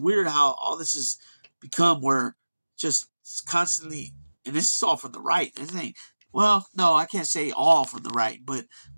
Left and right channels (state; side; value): inverted; both; correlation -1.00